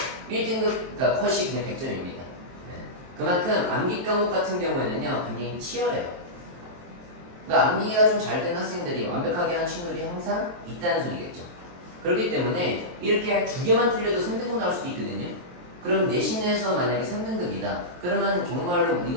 1등급 그러니까 컷이 그냥 100점입니다. 그만큼 암기 과목 같은 경우에는요 굉장히 치열해요. 그러니까 암기가 좀 잘 된 학생들이 완벽하게 한 친구들이 항상 있다는 소리겠죠. 그렇기 때문에 이렇게 두 개만 틀려도 3등급 나올 수도 있거든요. 그럼 내신에서 만약에 3등급이다. 그러면 정말로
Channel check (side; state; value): left; late; 23 ms